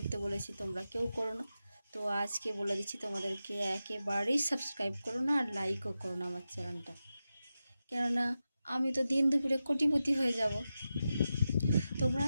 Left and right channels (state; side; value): inverted; both; correlation -0.92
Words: বলেছি, তোমরা কেউ করো না। তো আজকে বলে দিচ্ছি তোমাদেরকে, একেবারেই সাবস্ক্রাইব করো না আর লাইকও করো না আমার চ্যানেলটা। কেননা আমি তো দিন দুপুরে কোটিপতি হয়ে যাব। তোমরা